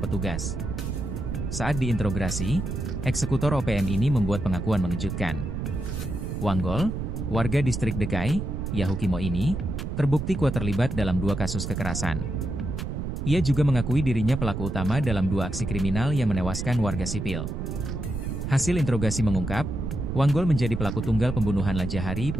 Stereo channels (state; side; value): noise; right; rumble, 4 dB below the sound